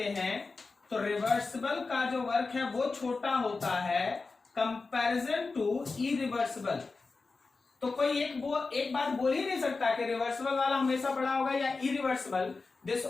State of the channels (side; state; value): right; quieter; 4.0 dB